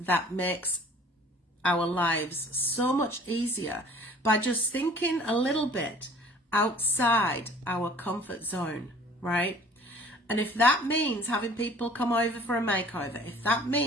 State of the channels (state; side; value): normal; both; correlation 0.50